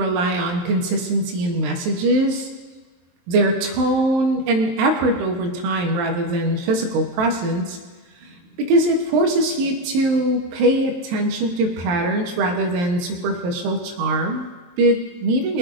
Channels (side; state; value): left; late; 23 ms